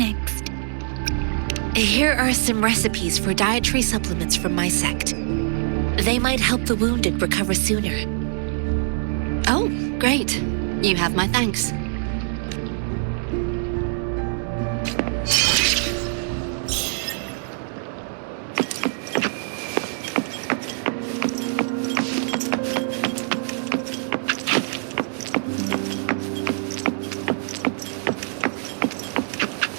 Here are some recipes for dietary supplements from my sect. They might help the wounded recover sooner. Oh, great. You have my thanks.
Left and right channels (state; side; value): silent; left; digital silence